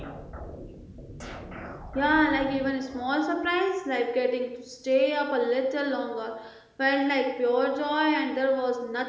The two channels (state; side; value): identical; both; correlation 1.00